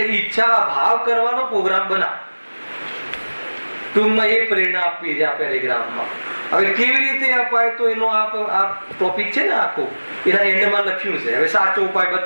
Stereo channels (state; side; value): inverted; both; correlation -1.00